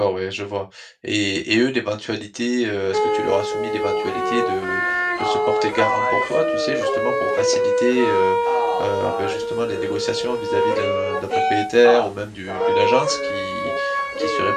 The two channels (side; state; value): both; identical; correlation 1.00